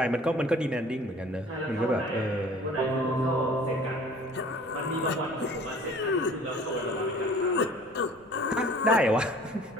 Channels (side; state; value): both; normal; correlation 0.49